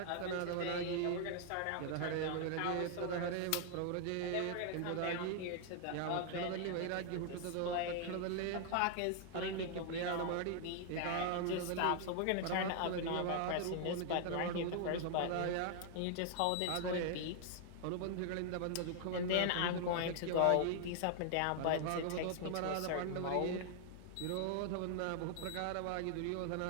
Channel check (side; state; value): both; different; correlation 0.00